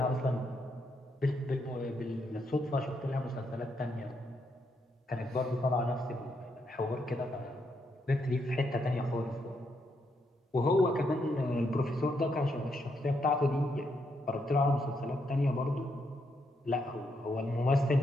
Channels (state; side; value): normal; both; correlation 0.78